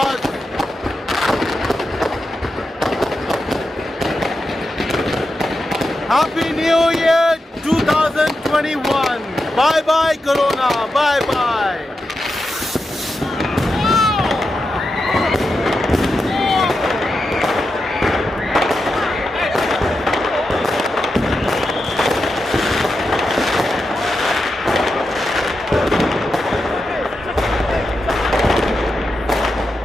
Happy New Year 2021. Bye bye Corona. Bye bye.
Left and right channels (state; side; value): normal; both; correlation 0.88